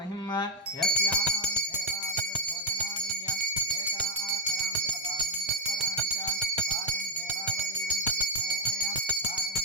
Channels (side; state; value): both; normal; correlation -0.01